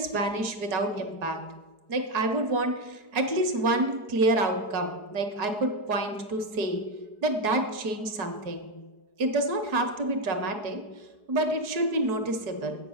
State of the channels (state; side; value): late; left; 4.8 ms